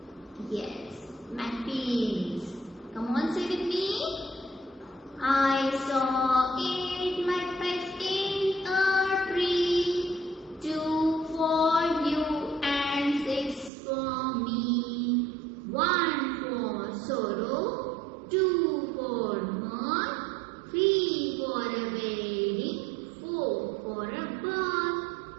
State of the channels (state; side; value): drops out; left; at 13.7 s